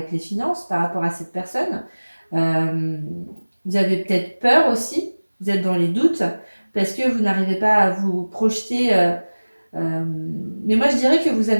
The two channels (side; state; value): both; inverted; correlation -1.00